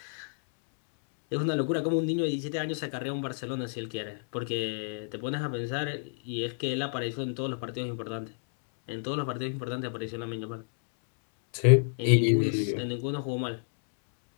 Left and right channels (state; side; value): silent; right; 58 dB below the other